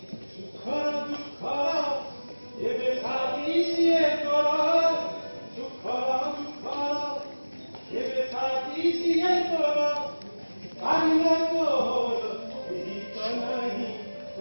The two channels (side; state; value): both; inverted; correlation -1.00